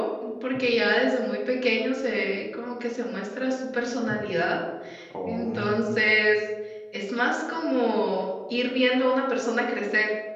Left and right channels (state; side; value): identical; both; correlation 1.00